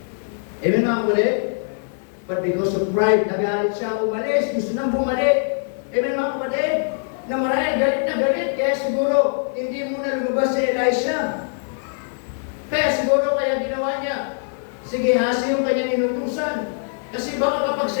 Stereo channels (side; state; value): right; silent; digital silence